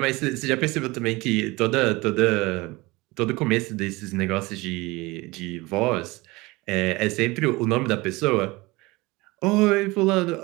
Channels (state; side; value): quieter; left; 22.6 dB